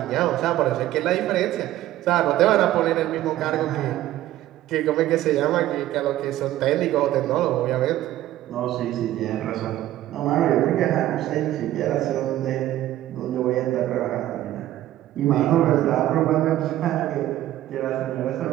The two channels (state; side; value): quieter; left; 14.1 dB